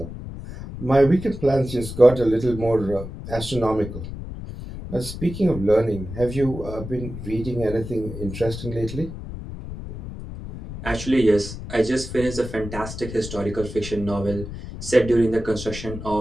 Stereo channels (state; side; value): noise; left; rumble, 10 dB below the sound